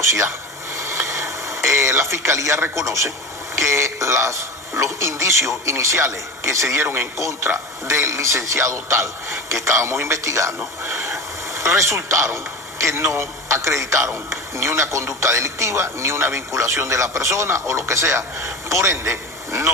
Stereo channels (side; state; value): both; normal; correlation 0.27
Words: La fiscalía reconoce que los indicios iniciales que se dieron en contra del licenciado tal que estábamos investigando resultaron que no acreditaron ni una conducta delictiva, ni una vinculación de la persona o lo que sea. Por ende,